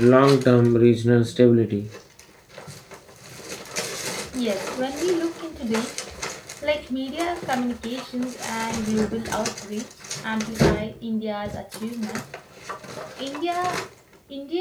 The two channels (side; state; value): both; identical; correlation 1.00